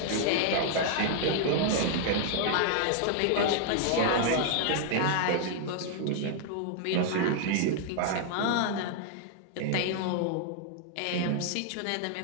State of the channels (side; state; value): both; different; correlation 0.00